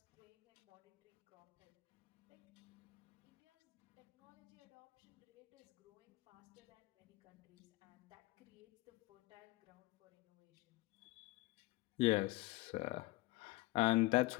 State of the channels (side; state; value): right; quieter; 20.6 dB